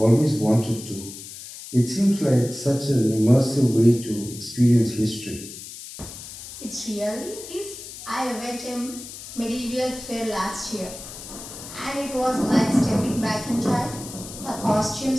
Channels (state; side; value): noise; left; hiss, 13 dB below the sound